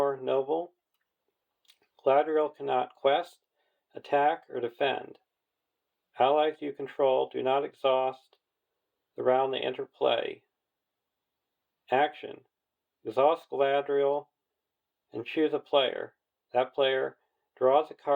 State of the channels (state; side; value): identical; both; correlation 1.00